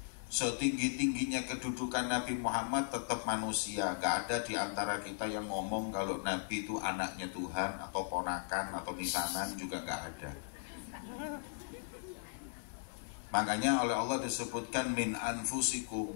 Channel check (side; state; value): right; silent; 53 dB below the other